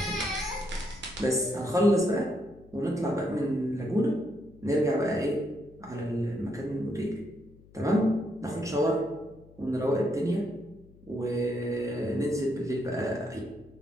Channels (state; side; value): noise; left; hum, 24 dB below the sound